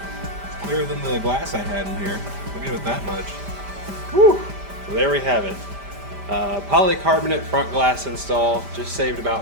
It's clearer than the glass I had in here. I'll give it that much. Whew. So there we have it. Polycarbonate front glass install. Just saved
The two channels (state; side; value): late; left; 5.0 ms